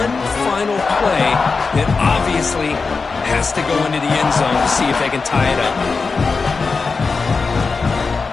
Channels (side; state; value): right; quieter; 4.5 dB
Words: final play that obviously has to go into the end zone to see if they can tie it up.